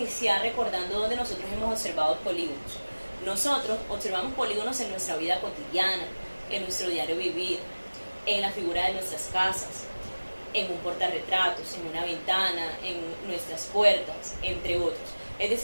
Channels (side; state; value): both; inverted; correlation -1.00